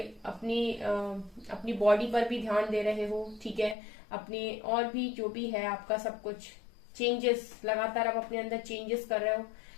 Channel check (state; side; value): drops out; right; at 3.8 s